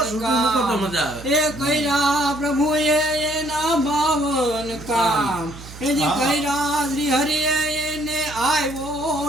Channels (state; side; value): noise; right; hum, 15 dB below the sound